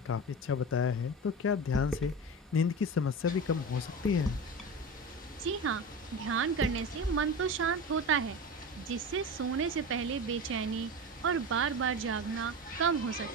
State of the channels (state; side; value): normal; both; correlation 0.27